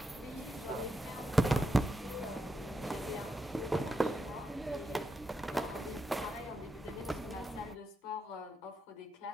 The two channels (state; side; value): normal; both; correlation 0.84